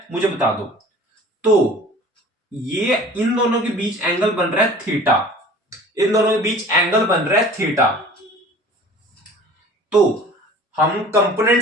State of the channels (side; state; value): both; normal; correlation 0.45